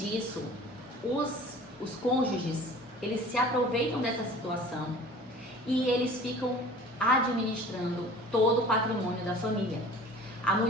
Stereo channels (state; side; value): normal; both; correlation 0.45